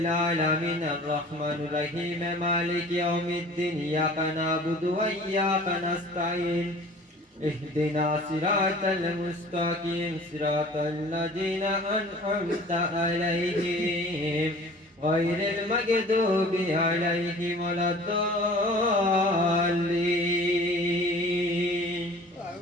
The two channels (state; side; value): normal; both; correlation 0.46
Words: الرحمن الرحيم مالك يوم الدين إياك نعبد وإياك نستعين اهدنا صراط المستقيم صراط الذين أنعمت عليهم غير المغضوب عليهم ولا الضالين